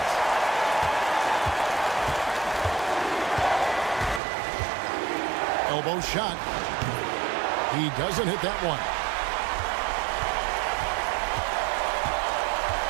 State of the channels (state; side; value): drops out; left; at 4.2 s